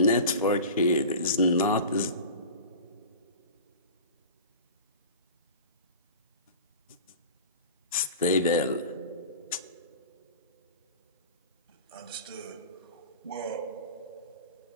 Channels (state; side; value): inverted; both; correlation -0.36